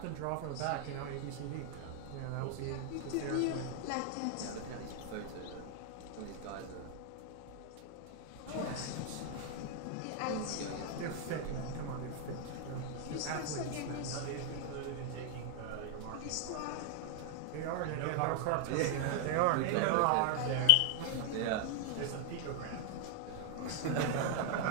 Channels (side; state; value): both; different; correlation 0.00